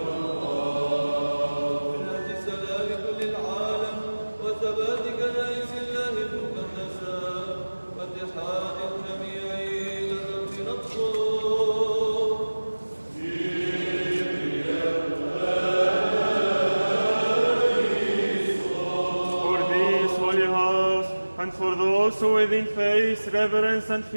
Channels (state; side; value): inverted; both; correlation -1.00